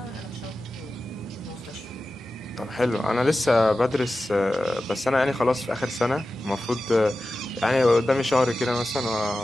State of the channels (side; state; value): both; normal; correlation 0.94